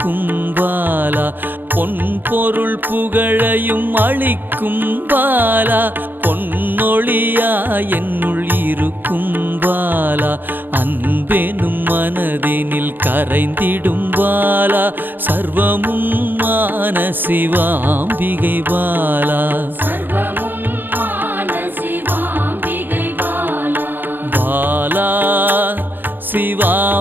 பாலா. பொன் பொருள் புகழையும் அளிக்கும் பாலா, பொன்னொழியா என்னுள் இருக்கும் பாலா. அன்பெனும் மனதினில் கரைந்திடும் பாலா, சர்வமும் மான சிவாம்பிகை பாலா. பாலா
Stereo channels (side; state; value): left; late; 0.092 ms